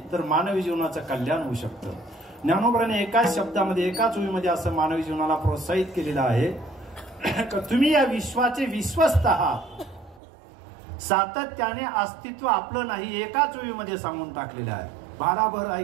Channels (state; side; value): drops out; left; at 10.2 s